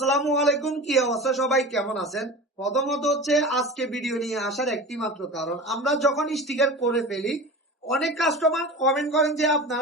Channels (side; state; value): both; normal; correlation 0.32